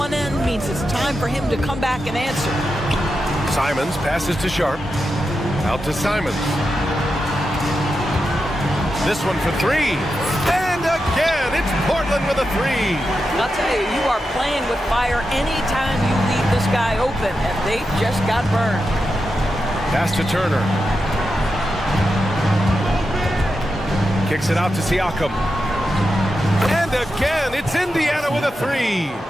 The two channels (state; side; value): normal; both; correlation 0.89